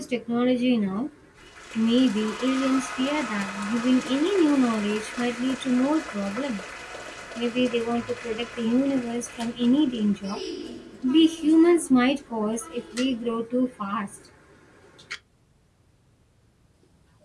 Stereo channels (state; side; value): identical; both; correlation 1.00